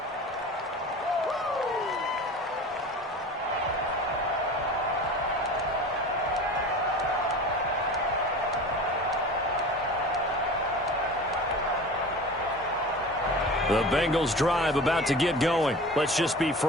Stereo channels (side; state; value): both; normal; correlation 0.36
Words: The Bengals drive about to get going. Let's just be